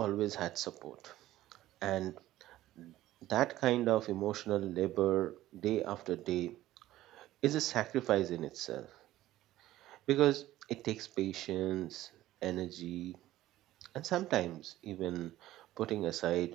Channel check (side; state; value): left; quieter; 14.9 dB